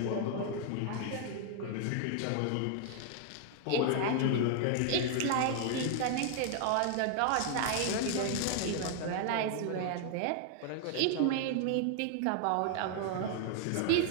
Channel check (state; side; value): different; both; correlation 0.00